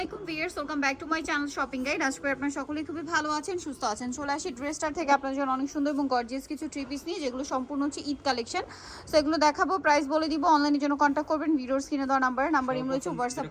আলাইকুম viewers, welcome back to my channel shopping guide. আজকে আপনারা সকলেই খুবই ভালো আছেন, সুস্থ আছেন। চলে আসি ড্রেসটার থেকে আপনাদের জন্য অনেক সুন্দর এবং গর্জিয়াস কিছু থ্রি পিস নিয়ে, যেগুলো সম্পূর্ণ হচ্ছে ঈদ কালেকশন। সো এগুলো দেখাবো, প্রাইস বলে দিব। অনলাইনের জন্য কন্ট্যাক্ট করবেন ভিডিওর স্ক্রিনে দেওয়া নাম্বার ইম রয়েছে, হোয়াটসঅ্যাপ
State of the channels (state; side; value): identical; both; correlation 1.00